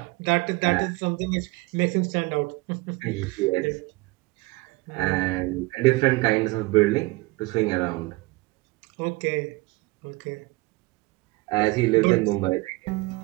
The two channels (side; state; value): left; quieter; 22.9 dB